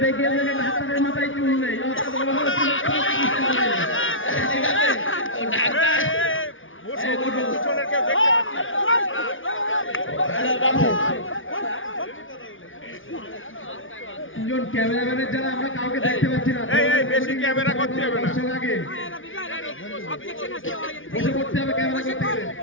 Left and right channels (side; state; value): right; late; 0.57 ms